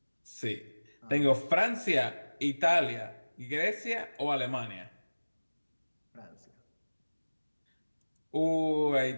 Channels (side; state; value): both; inverted; correlation -1.00